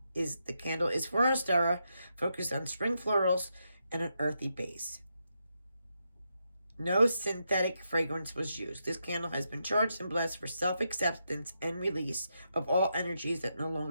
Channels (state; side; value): inverted; both; correlation -0.84